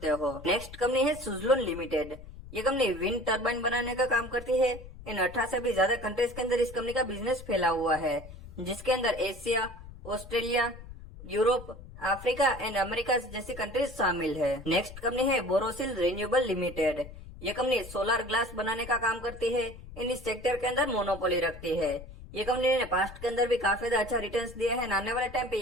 हो। नेक्स्ट कंपनी है सुजलोन लिमिटेड। ये कंपनी विंड टर्बाइन बनाने का काम करती है। इन 18 से भी ज्यादा कंट्रीज के अंदर इस कंपनी का बिजनेस फैला हुआ है, जिसके अंदर Asia, Australia, Europe, Africa and America जैसी कंट्रीज शामिल है। नेक्स्ट कंपनी है बोरोसिल रिन्यूएबल लिमिटेड। ये कंपनी सोलर ग्लास बनाने का काम करती है। इन इस सेक्टर के अंदर मोनोपोली रखती है। ये कंपनी ने पास्ट के अंदर भी काफी ज्यादा अच्छा रिटर्न्स दिया है। आने वाले टाइम पे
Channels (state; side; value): noise; left; rumble, 15 dB below the sound